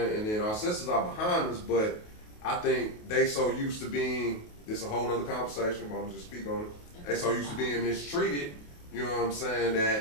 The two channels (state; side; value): late; right; 28 ms